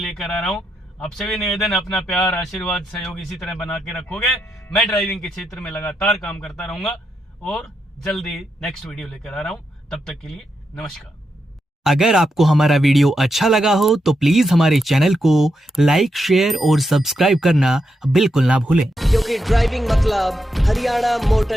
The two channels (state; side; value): normal; both; correlation 0.84